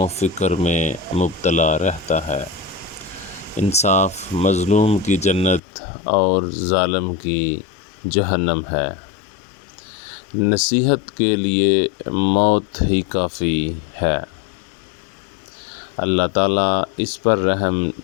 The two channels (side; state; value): right; drops out; at 5.6 s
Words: فکر میں مبتلا رہتا ہے۔ انصاف مظلوم کی جنت اور ظالم کی جہنم ہے۔ نصیحت کے لیے موت ہی کافی ہے۔ اللہ تعالیٰ اس پر رحم